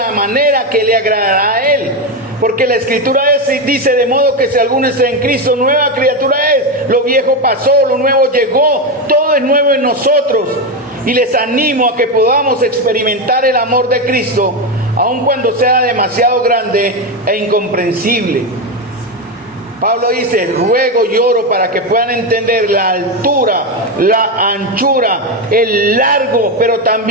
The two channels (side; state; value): both; normal; correlation 0.11